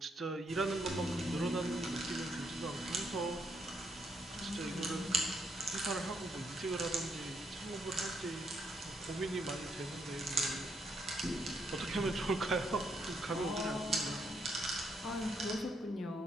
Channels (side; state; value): both; normal; correlation 0.76